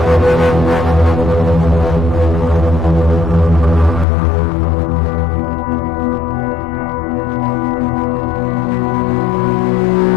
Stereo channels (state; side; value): drops out; right; at 4.0 s